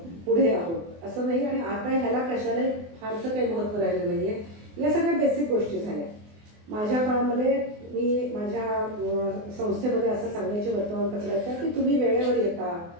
पुढे आहोत, असं नाही. आणि आता ह्याला कशालाही फारसं काही महत्त्व राहिलं नाही आहे. या सगळ्या बेसिक गोष्टी झाल्या. माझ्या काळामध्ये मी माझ्या संस्थेमध्ये असं सांगायचे वर्तमानपत्राच्या की तुम्ही वेळेवर येता,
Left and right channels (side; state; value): left; late; 24 ms